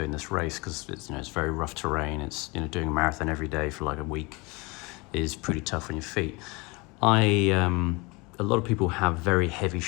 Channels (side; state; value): right; quieter; 26.3 dB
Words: this race, because it's very rough terrain. It's doing a marathon every day for like a week is pretty tough on your feet. A lot of people have very heavy